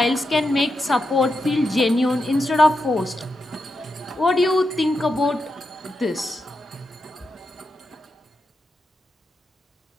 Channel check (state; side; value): normal; both; correlation 0.86